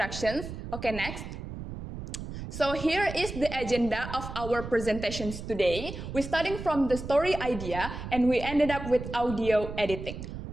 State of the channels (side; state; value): right; noise; rumble, 9 dB below the sound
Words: Okay, next. So here is the agenda of our presentations today. We're starting from the story idea and we ended up with audio editing.